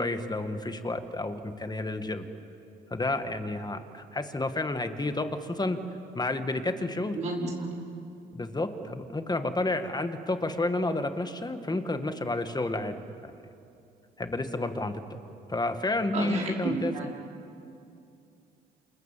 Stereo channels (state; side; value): normal; both; correlation 0.64